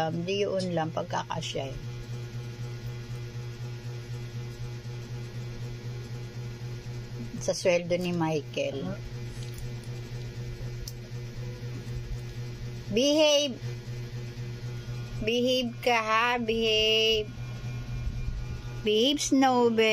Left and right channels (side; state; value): both; identical; correlation 1.00